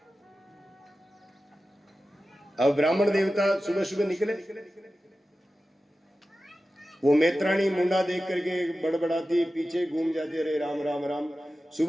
अब ब्राह्मण देवता सुबह सुबह निकले, वो मैत्राणी मुंडा देख करके बड़बड़ाती पीछे घूम जाती, अरे राम राम राम,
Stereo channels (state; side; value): normal; both; correlation 0.94